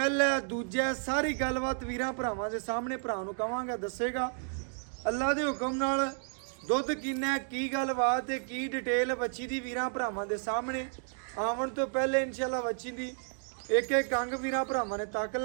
दूजा सारी गलबात वीर भरावां दे सामने भरा नूं कहांगा दसेगा अल्लाह दे हुक्म नाल। दुध किन्ना की गलबात है की डिटेल बच्ची दी वीर भरावां दे सामने आवन तो पहले इंशाअल्लाह बच्ची दी एक एक अंग वीर भरावां ने तक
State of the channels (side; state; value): left; silent; 56 dB below the other